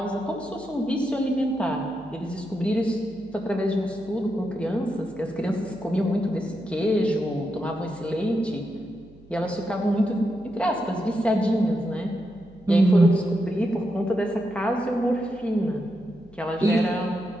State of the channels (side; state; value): right; noise; hum, 24 dB below the sound